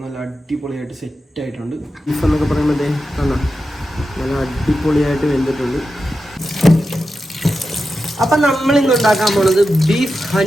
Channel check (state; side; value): normal; both; correlation 0.90